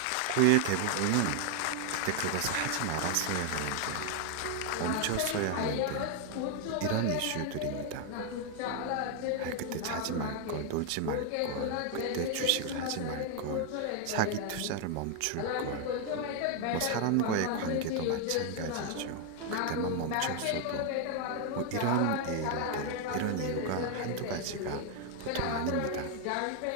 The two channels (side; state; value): both; different; correlation 0.00